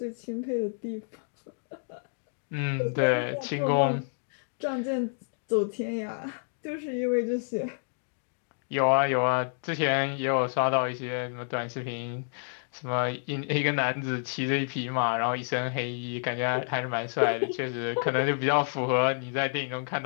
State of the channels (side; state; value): right; silent; digital silence